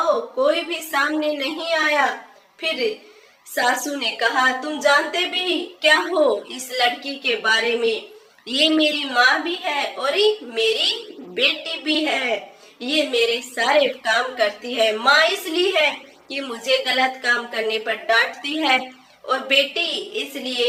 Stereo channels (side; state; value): both; identical; correlation 1.00